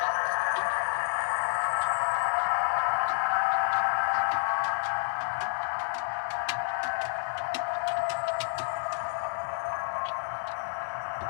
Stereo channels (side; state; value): right; silent; digital silence